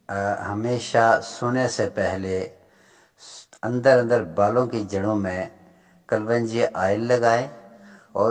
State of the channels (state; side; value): identical; both; correlation 1.00